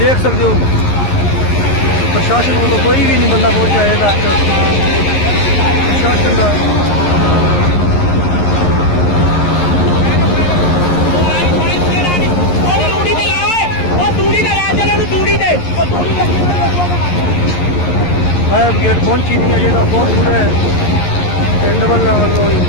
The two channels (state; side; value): late; right; 11 ms